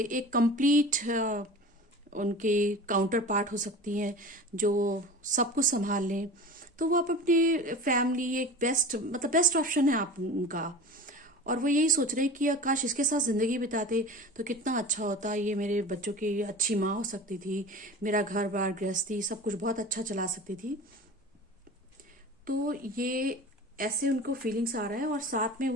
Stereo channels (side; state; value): both; normal; correlation 0.36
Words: एक कंप्लीट उनके काउंटर पार्ट हो सकती हैं जो सब कुछ संभाल लें। तो वो आप अपनी फैमिली एक बेस्ट, मतलब बेस्ट ऑप्शन है आप उनका। और वो यही सोच रहे हैं कि काश इसके साथ जिंदगी बिताते तो कितना अच्छा होता, ये मेरे बच्चों की अच्छी माँ हो सकती थी, मेरा घर बार गृहस्थी सब कुछ बहुत अच्छा चला सकती थी। तो ये ऐसे उनको फीलिंग्स आ रहा है, और साथ में